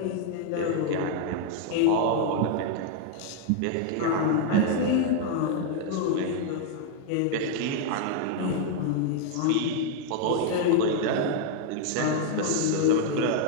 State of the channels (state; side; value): different; both; correlation 0.00